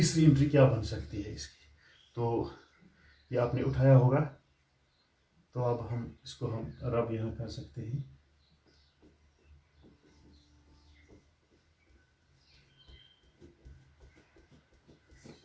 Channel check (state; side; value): identical; both; correlation 1.00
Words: एंट्री क्या बन सकती है इसकी। तो ये आपने उठाया होगा, तो अब हम इसको रब यहाँ कर सकते हैं।